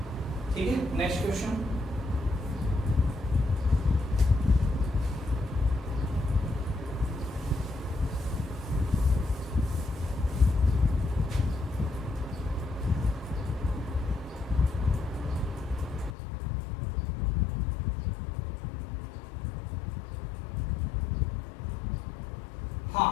ठीक है, नेक्स्ट क्वेश्चन, हाँ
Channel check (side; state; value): right; drops out; at 16.1 s